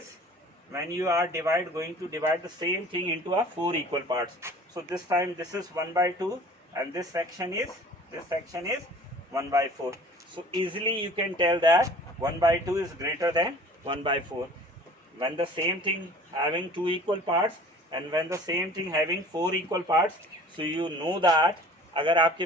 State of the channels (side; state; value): both; normal; correlation 0.47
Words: when you are going to divide the same thing into a 4 equal parts. So this time this is 1 by 2 and this section is 1 by 4. So easily you can tell that 1 by 2 is greater than 1 by 4. When the same thing having two equal parts and when the same thing having four equal parts, so you know that अगर आपके